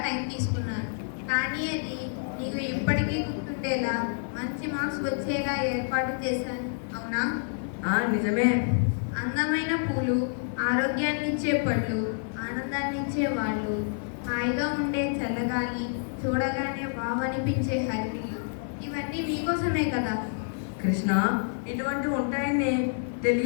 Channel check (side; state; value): right; silent; digital silence